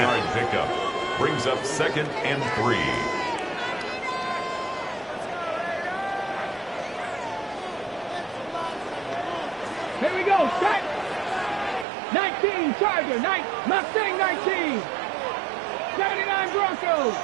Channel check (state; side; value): drops out; left; at 11.9 s